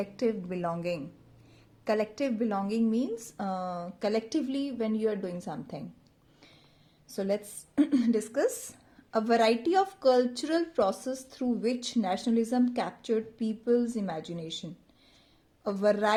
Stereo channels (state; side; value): identical; both; correlation 1.00